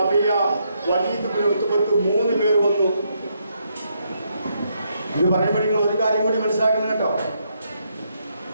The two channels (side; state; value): both; inverted; correlation -0.77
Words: Walid bin Utbah 3 പേർ വന്നു. ഇത് പറയുമ്പോൾ നിങ്ങൾ ഒരു കാര്യം കൂടി മനസ്സിലാക്കണം കേട്ടോ.